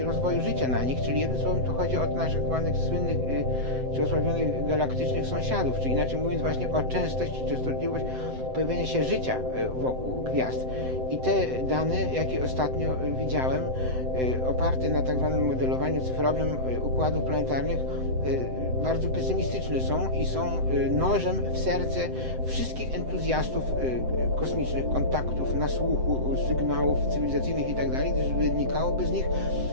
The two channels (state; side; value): late; left; 7.8 ms